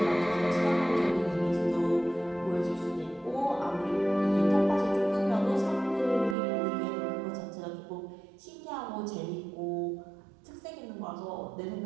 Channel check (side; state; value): left; drops out; at 6.4 s